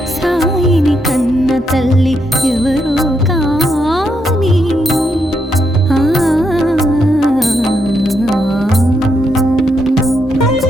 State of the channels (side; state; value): both; normal; correlation 0.79